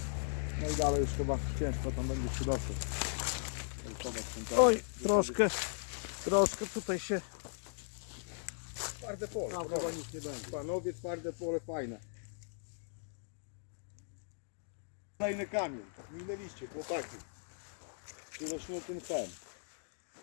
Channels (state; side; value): silent; right; digital silence